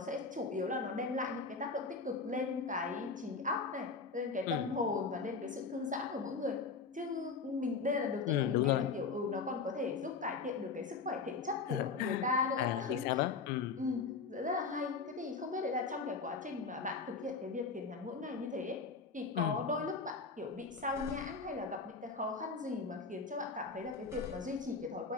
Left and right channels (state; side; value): quieter; right; 4.7 dB